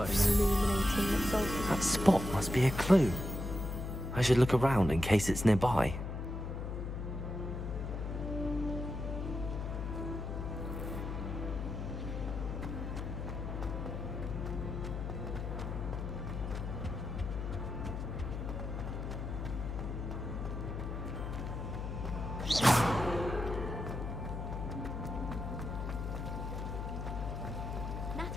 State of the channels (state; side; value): noise; left; hum, 4 dB below the sound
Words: illuminating absolute. That spot must be a clue. I should look around in case it's nearby.